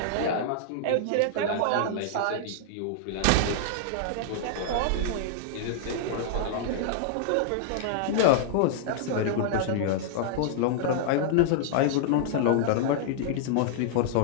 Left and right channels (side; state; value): both; different; correlation -0.01